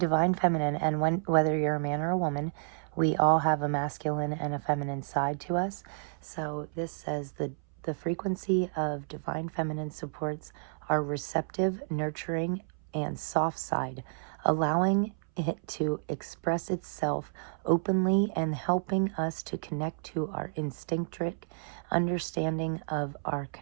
Feminine, and whether you're a man or a woman, we all have a masculine and a feminine side to us. So this says the frequency of Divine Feminine supports our receptive, nurturing, and soft side, allowing it to express itself openly and helping us to connect to our instinctive understanding of our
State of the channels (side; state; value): left; silent; 57 dB below the other